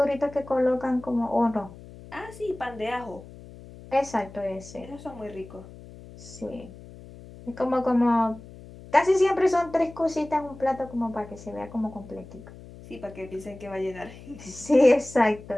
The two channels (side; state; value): left; noise; hum, 17 dB below the sound